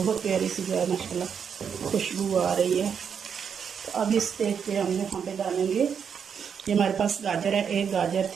प्यारी सी जो है माशाल्लाह खुशबू आ रही है। तो अब इस स्टेज पे हम यहाँ पे डालेंगे, ये हमारे पास गाजर है, एक गाजर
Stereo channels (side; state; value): left; quieter; 7.1 dB